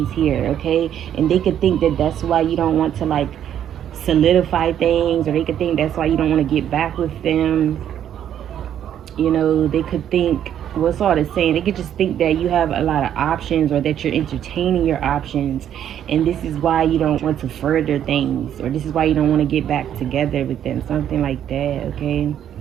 here, okay? And they could think that that's why you don't want to like solidify things, or they could think that's why you don't want to get back with them. They could think, what's all the saying? They could just think that you have a lot of options, or that you're entertaining your options, and this is why you don't want to further things, or this is why you don't want to get back together with them, something like that, okay?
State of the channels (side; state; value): left; quieter; 10.1 dB